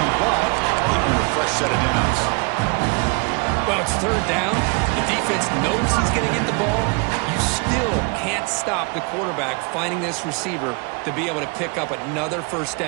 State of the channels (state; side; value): quieter; left; 31.5 dB